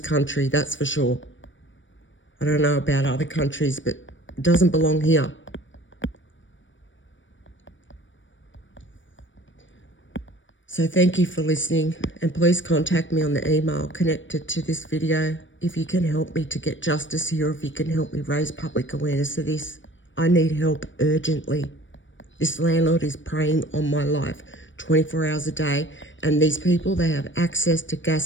country, that's for sure. I don't know about other countries, but it doesn't belong here. So thank you for listening, and please contact me on the email connected to this video if you can help me to get justice here, or if you can help me raise public awareness of this. I need help urgently. This landlord is preying on my life 24 hours a day, and these people, they have access to gas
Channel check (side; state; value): right; late; 0.56 ms